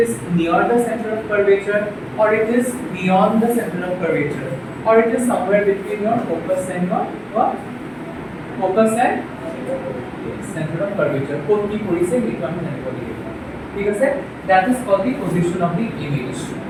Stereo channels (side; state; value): both; identical; correlation 1.00